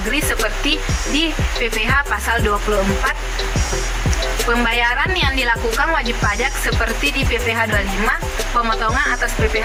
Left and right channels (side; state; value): both; identical; correlation 1.00